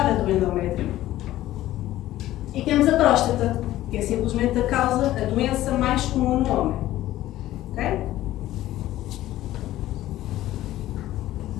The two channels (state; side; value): quieter; right; 14.7 dB